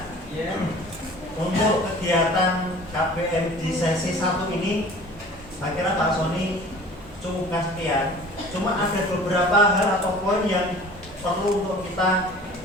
untuk kegiatan KPM di sesi 1 ini, saya kira Pak Sony cukupkan sekian. Cuma ada beberapa hal atau poin yang perlu untuk kita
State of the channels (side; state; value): both; normal; correlation 0.45